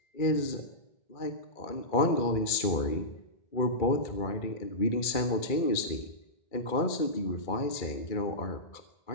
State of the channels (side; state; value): right; late; 2.3 ms